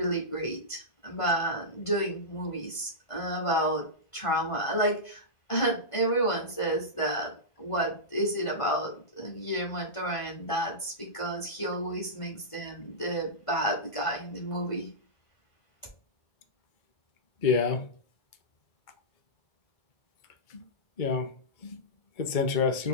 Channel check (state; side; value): late; right; 1.5 ms